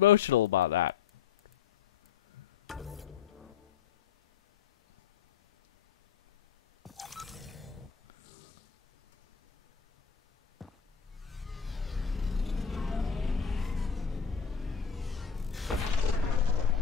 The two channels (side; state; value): right; quieter; 7.0 dB